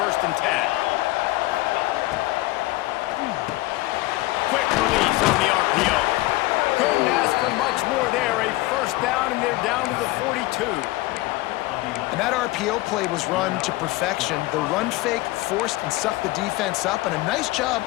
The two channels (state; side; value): quieter; right; 19.3 dB